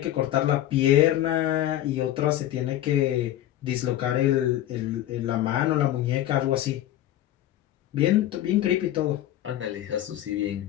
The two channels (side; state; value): right; quieter; 13.1 dB